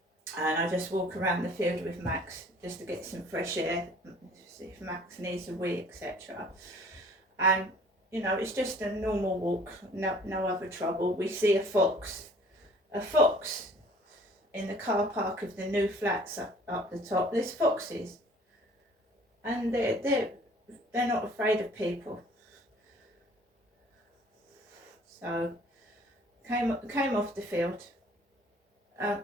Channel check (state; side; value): normal; both; correlation 0.53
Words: and I just walk around the field with Max just to get some fresh air, see if Max needs a wee, etc. And you know, it's just a normal walk, no other trouble. We see a fox in the car park of the new flats up the top. There's foxes, and they're not afraid of people. So came off the field.